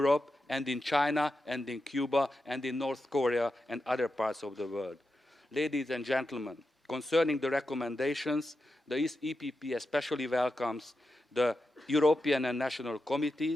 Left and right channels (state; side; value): normal; both; correlation 0.89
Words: and in China and in Cuba and in North Korea and other parts of the world. Ladies and gentlemen, concerning the recommendations, the EPP especially welcomes the European and national